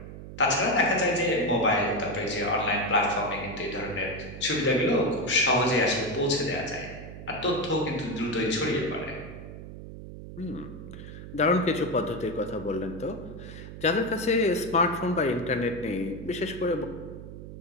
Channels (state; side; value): noise; right; hum, 12 dB below the sound